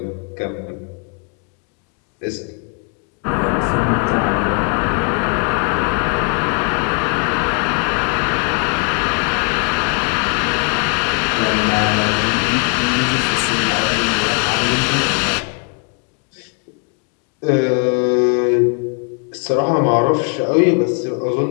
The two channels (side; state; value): right; quieter; 37.0 dB